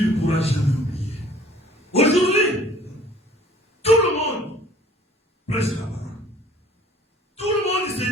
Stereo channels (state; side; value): normal; both; correlation 0.53